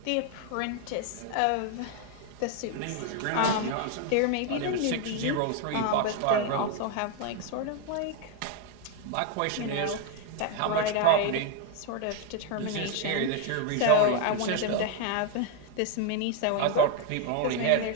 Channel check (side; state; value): both; different; correlation 0.01